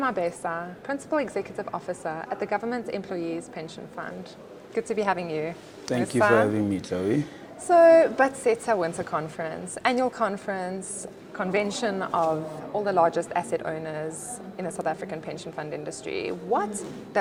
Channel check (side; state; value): both; identical; correlation 1.00